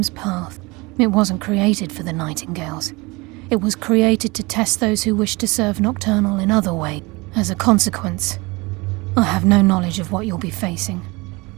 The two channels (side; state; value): left; quieter; 24.8 dB